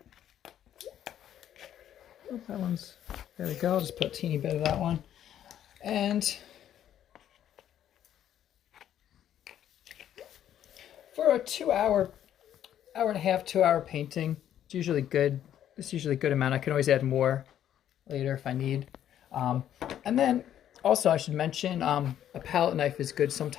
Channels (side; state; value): right; quieter; 10.7 dB